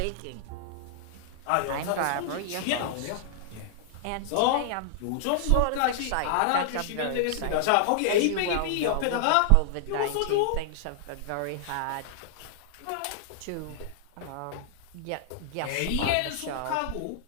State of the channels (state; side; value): different; both; correlation -0.01